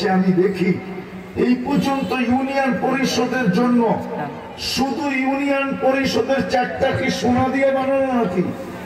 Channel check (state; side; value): identical; both; correlation 1.00